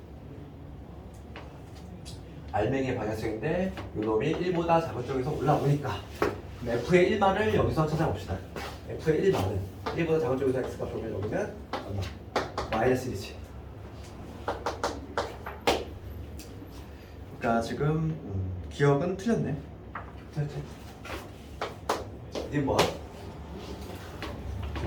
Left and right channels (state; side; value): identical; both; correlation 1.00